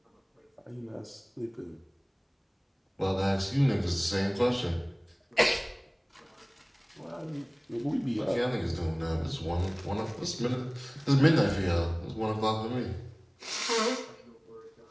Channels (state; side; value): identical; both; correlation 1.00